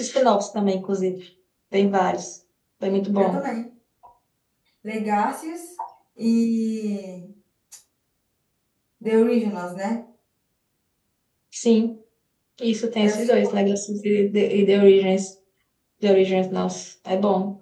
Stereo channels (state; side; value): identical; both; correlation 1.00